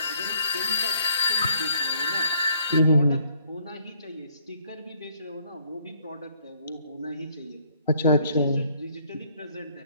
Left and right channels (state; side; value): inverted; both; correlation -0.66